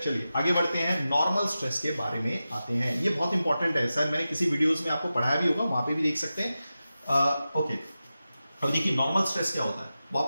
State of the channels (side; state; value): both; inverted; correlation -0.93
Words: चलिए आगे बढ़ते हैं, नॉर्मल स्ट्रेस के बारे में आते हैं। ये बहुत इंपॉर्टेंट है, शायद मैंने किसी वीडियोस में आपको पढ़ाया भी होगा, वहां पे भी देख सकते हैं, ओके। अब देखिए नॉर्मल स्ट्रेस क्या होता है।